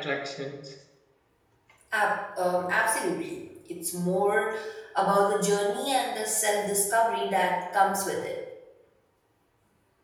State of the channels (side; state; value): both; identical; correlation 1.00